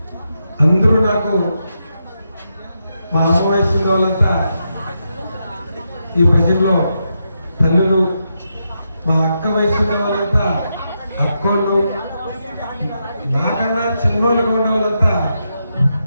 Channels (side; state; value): both; inverted; correlation -0.84